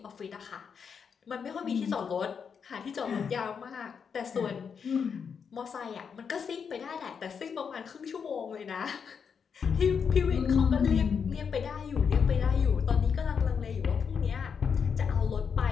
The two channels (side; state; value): right; quieter; 6.5 dB